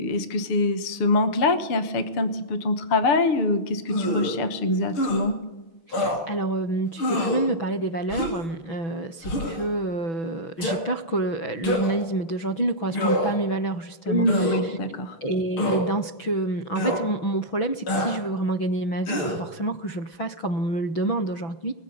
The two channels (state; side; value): late; right; 6.1 ms